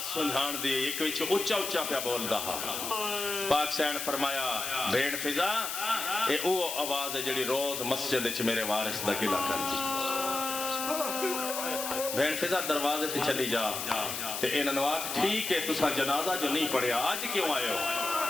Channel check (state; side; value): noise; left; hiss, 4 dB below the sound